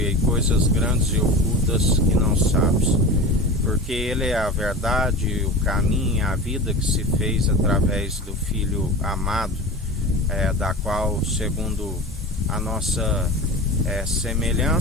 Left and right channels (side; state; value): both; normal; correlation 0.31